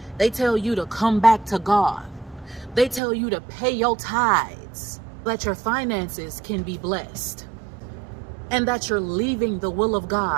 They tell you to come back to God. They tell you to pay your tithes, that your finances can be blessed, and that you're leaving the will of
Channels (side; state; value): left; drops out; at 3.0 s